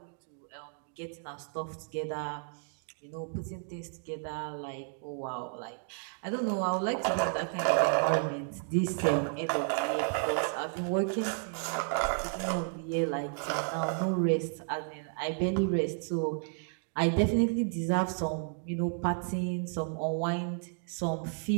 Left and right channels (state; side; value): silent; left; 56 dB below the other